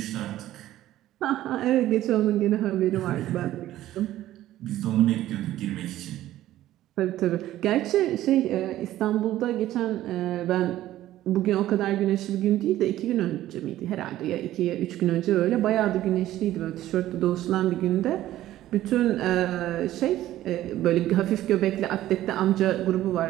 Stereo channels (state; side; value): quieter; left; 14.1 dB